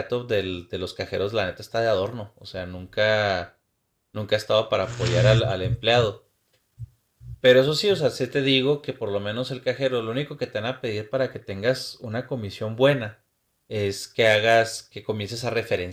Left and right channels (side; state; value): both; identical; correlation 1.00